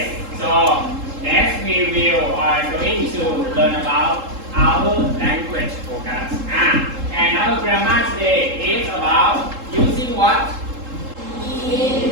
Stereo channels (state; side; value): late; left; 3.7 ms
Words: So next we will are going to learn about our language focus. And our grammar today is about using what?